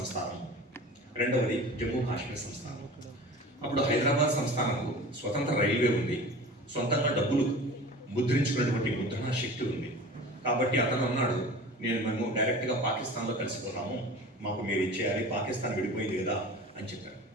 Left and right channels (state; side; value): normal; both; correlation 0.38